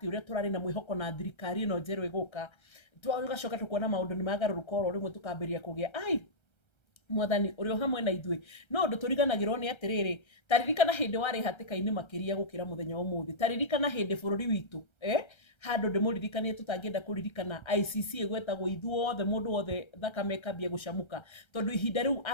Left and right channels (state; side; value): late; right; 1.3 ms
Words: ũrĩa tũrarĩ na mwĩhoko na thirikari ĩno njerũ ĩgũka, tũgacoka tũkona maũndũ nĩ magarũrũka oro rĩmwe tũkambĩrĩria kũgĩa mwathani ũrĩ o hamwe na ithuĩ. No ũndũ tũriganagĩrwo nĩ atĩrĩrĩ, ta ririkana hĩndĩ warĩ hatĩka-inĩ makĩria gũkĩra mũthenya ũmũthĩ. Ta ririkana hĩndĩ bũrũri witũ handũ ndĩmũririkanie tũtangĩenda kũririkana ICC ĩgwetagwo ithuothe mũndũ wothe thakame ĩkambia gũcamũka, tondũ ihinda rĩu